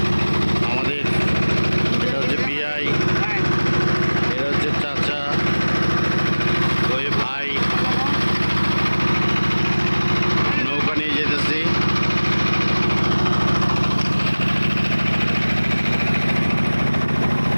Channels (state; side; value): inverted; both; correlation -1.00